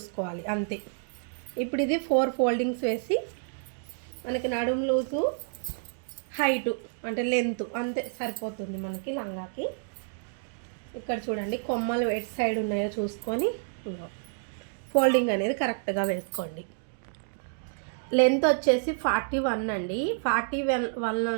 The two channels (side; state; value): left; silent; digital silence